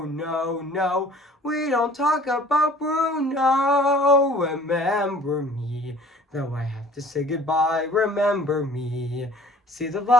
no. We don't talk about Bruno. Remember me. Though I have to say goodbye, remember me. See the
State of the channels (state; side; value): normal; both; correlation 0.50